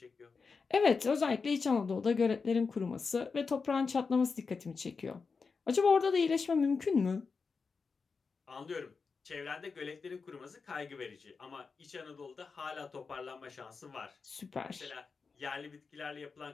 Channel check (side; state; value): right; quieter; 4.9 dB